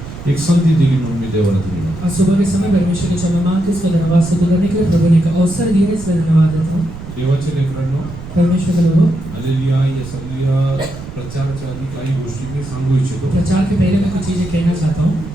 एक संधी दिली म्हणून मी देवाला दिली. आज सुबह के समय परमेश्वर के क्षमा मांग के उसका धन्यवाद स्तुति करने के लिए प्रभु ने एक अवसर दिया, इसलिए धन्यवाद देता हूँ. देवाच्या लेकरांनो, परमेश्वर के लोगों, हालेलुया. या सगळ्या प्रचाराच्या आधी काही गोष्टी मी सांगू इच्छितो. प्रचार के पहले मैं कुछ चीजें कहना चाहता हूँ.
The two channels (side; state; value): right; noise; rumble, 12 dB below the sound